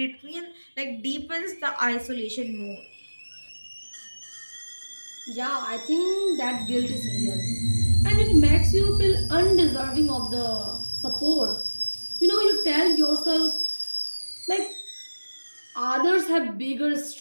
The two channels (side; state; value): both; inverted; correlation -1.00